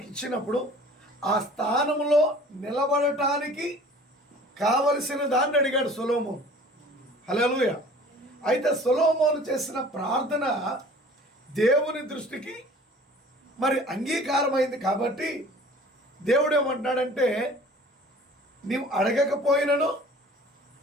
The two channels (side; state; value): both; normal; correlation 0.47